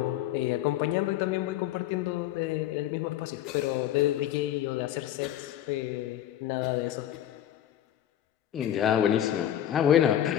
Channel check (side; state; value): right; quieter; 11.6 dB